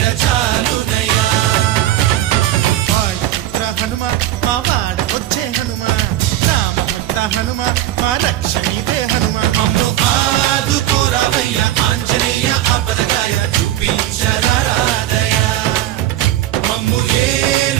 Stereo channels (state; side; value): quieter; left; 13.4 dB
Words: చాలునయ్యా వాయుపుత్ర హనుమా మా వాడకొచ్చే హనుమా రామభక్త హనుమా మా రక్షణీ